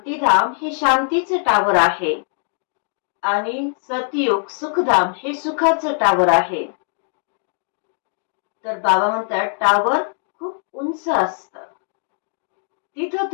हे शांतीचं टावर आहे आणि सतयुग सुखधाम हे सुखाचं टावर आहे. तर बाबा म्हणतात, टावर खूप उंच असतं, तिथं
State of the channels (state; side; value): silent; right; 59 dB below the other